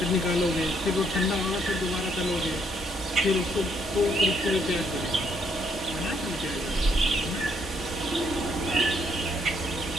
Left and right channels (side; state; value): both; normal; correlation 0.70